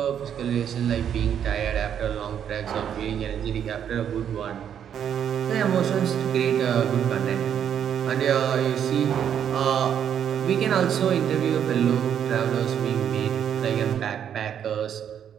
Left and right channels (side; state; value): left; quieter; 8.9 dB